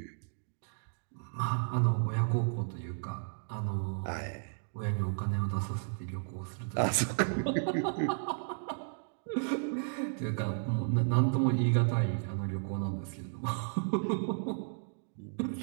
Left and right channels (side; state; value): left; silent; digital silence